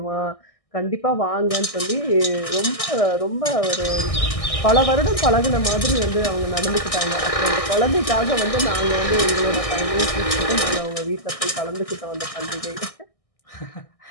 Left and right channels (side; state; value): right; late; 1.6 ms